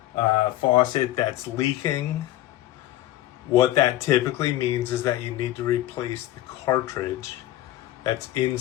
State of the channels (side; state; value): right; quieter; 14.8 dB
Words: faucet that's leaking. What that typically means is that you need to replace the cartridge that's